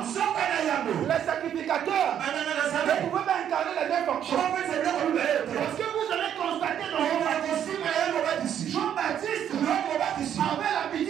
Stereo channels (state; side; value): quieter; left; 9.6 dB